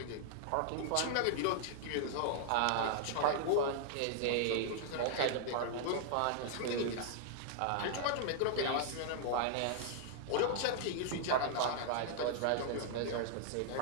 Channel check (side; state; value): both; different; correlation -0.01